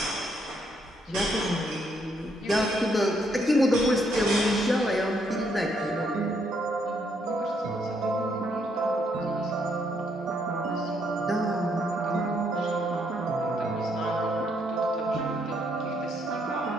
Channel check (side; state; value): both; normal; correlation 0.73